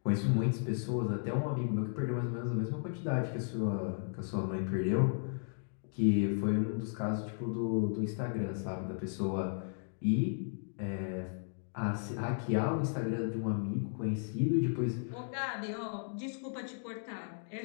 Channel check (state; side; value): silent; right; digital silence